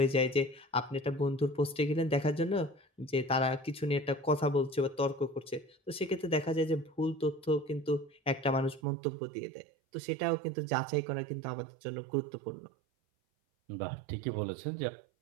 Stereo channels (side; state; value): left; drops out; at 8.8 s